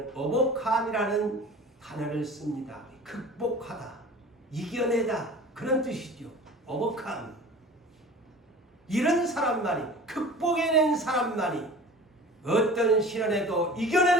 overcome이라는 단어를 씁니다. 극복하다, 이겨내다 그런 뜻이죠. overcome. 이런 사람만이, 극복해낸 사람만이, 어떤 시련에도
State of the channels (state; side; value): normal; both; correlation 0.41